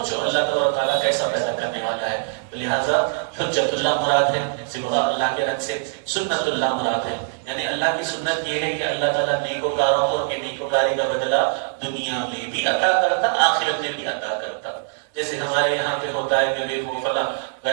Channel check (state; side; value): silent; left; digital silence